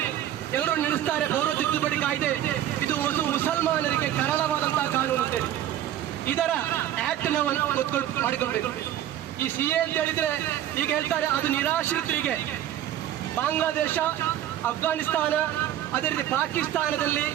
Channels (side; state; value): left; quieter; 11.9 dB